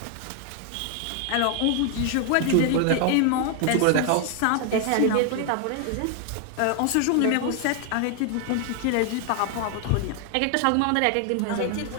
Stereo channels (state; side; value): different; both; correlation 0.00